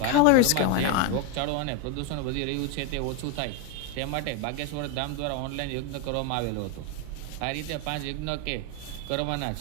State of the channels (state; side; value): different; both; correlation 0.02